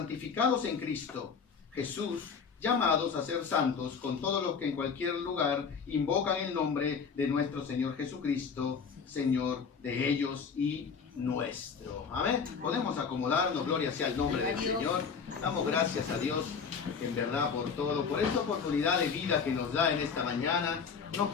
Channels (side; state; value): right; quieter; 6.0 dB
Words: en Cristo Jesús, llamados a ser santos con todos los que en cualquier lugar invocan el nombre de nuestro Señor Jesucristo, Señor de ellos y nuestro. Amén. Podemos acomodarnos, gloria sea el nombre del Señor. Damos gracias a Dios, en verdad, por todo, por esta oportunidad de vida que nos da en esta mañana. Una